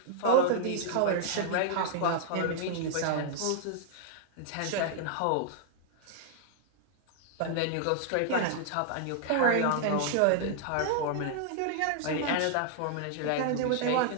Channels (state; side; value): different; both; correlation -0.01